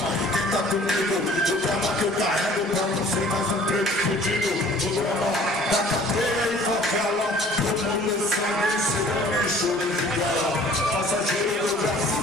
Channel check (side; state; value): both; normal; correlation 0.51